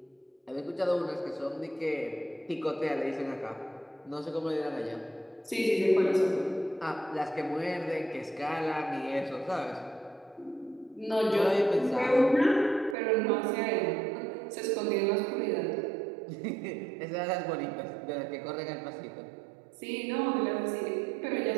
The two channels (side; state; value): left; drops out; at 13.0 s